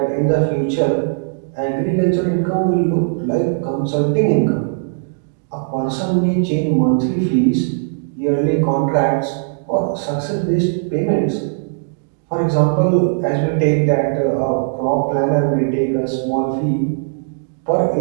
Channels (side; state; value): left; silent; digital silence